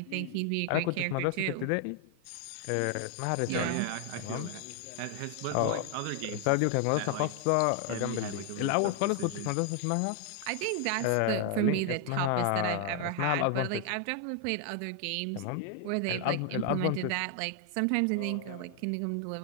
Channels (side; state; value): both; different; correlation 0.00